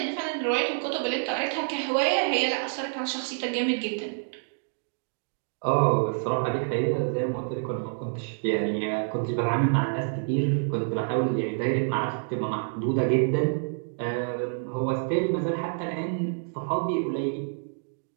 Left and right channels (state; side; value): silent; left; digital silence